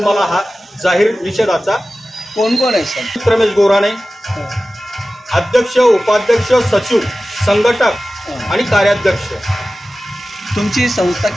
मला हा जाहीर निषेधाचा कोण आहे सर? रमेश गोराणे, अध्यक्ष, उपाध्यक्ष, सचिव, संघटक आणि कार्याध्यक्ष. तुमची संस्था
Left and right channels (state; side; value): normal; both; correlation 0.95